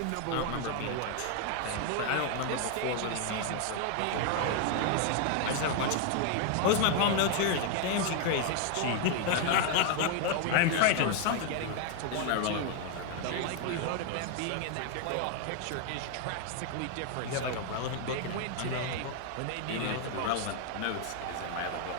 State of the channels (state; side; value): different; both; correlation 0.00